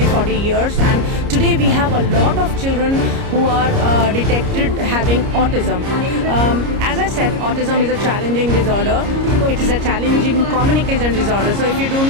years, and today we have a lot of children who are detected having autism. As I said, autism is a challenging disorder. It is a challenging communication disorder. So if you do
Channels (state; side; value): late; left; 29 ms